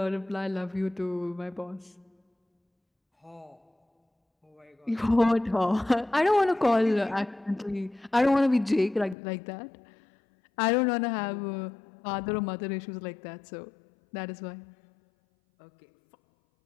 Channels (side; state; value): right; drops out; at 9.2 s